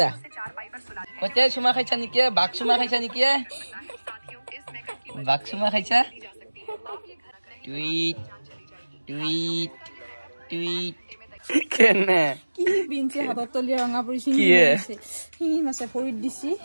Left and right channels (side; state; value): both; inverted; correlation -1.00